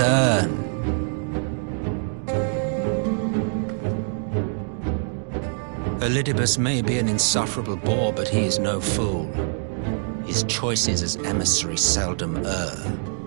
Elidibus may be an insufferable bore, but he is no fool. His choices as emissary seldom err.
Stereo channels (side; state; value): left; silent; 61 dB below the other